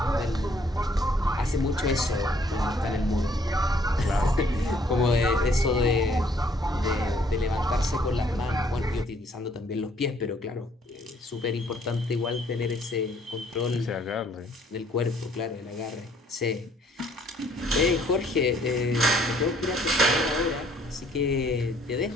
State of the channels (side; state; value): both; normal; correlation 0.63